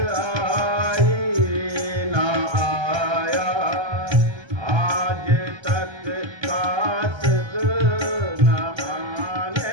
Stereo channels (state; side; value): late; left; 1.3 ms